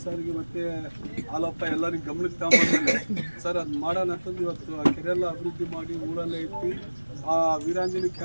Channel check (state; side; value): inverted; both; correlation -1.00